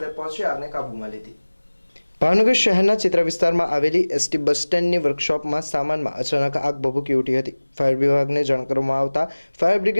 પહોંચી આગને કાબૂમાં લીધી। ભાવનગર શહેરના ચિત્ર વિસ્તારમાં આવેલી એસટી બસ સ્ટેન્ડની વર્કશોપમાં સામાનમાં અચાનક આગ ભભૂકી ઉઠી હતી। ફાયર વિભાગને જાણ કરવામાં આવતા ફાયર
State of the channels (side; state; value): both; inverted; correlation -1.00